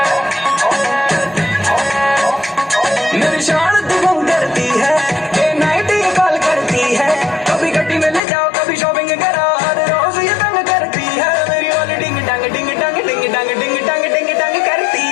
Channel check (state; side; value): drops out; right; at 8.2 s